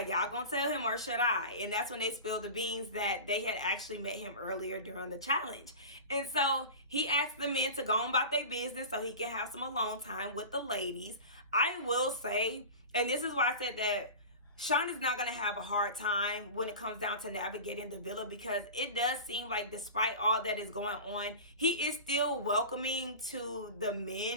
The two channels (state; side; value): inverted; both; correlation -0.32